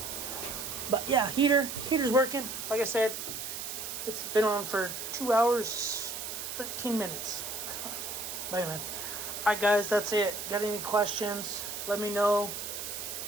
but yeah, heater's working. Like I said, it's been on for 2 hours, 13 minutes. But anyway, alright guys, that's it. Got any questions? Let me know.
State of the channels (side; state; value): right; noise; hiss, 6 dB below the sound